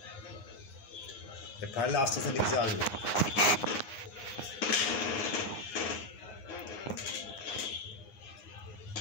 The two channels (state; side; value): late; right; 9.7 ms